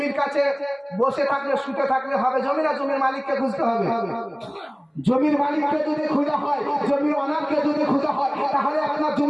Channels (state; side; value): identical; both; correlation 1.00